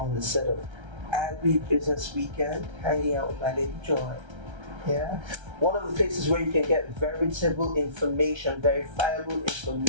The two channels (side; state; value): left; late; 1.3 ms